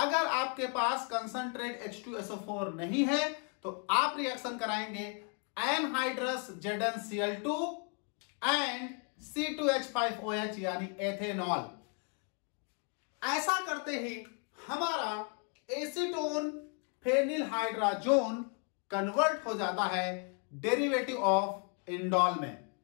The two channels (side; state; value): right; quieter; 39.2 dB